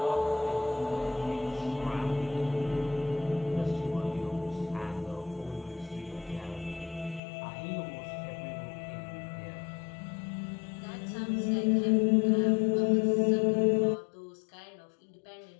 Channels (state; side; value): drops out; right; at 7.2 s